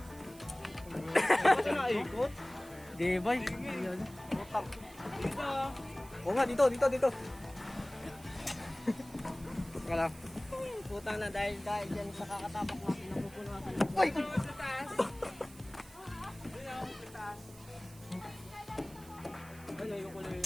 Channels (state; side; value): noise; right; hiss, 20 dB below the sound